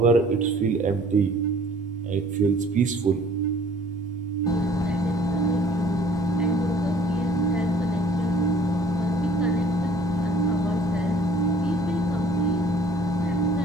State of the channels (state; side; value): normal; both; correlation 0.54